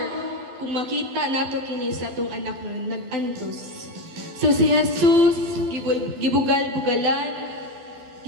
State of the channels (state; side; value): late; left; 12 ms